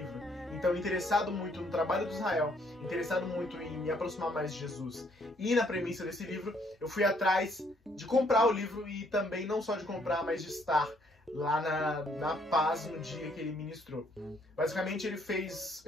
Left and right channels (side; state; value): both; normal; correlation 0.67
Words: Então, interessado muito no trabalho do Israel, interessado muito em me aproximar mais de Jesus e na premissa desse livro, eu fui atrás de comprar o livro e também não só de comprar, mas de estar lá na Paz no dia que ele ministrou. Basicamente, ele fez